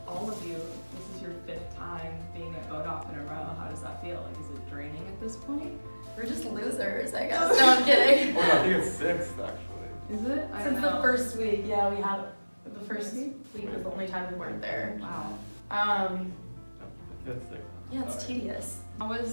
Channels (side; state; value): both; inverted; correlation -1.00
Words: all of you, this is your fifth time being at vote off in a row. How does that feel? Like, is it draining at this point? We're just losers, I guess. No, I'm kidding. Oh, no, I think it's sixth actually. Is it? I don't Since know. the first week, yeah, we had the first week was the only time we weren't there. Wow. Fifth, sixth. Yeah, it's tedious. How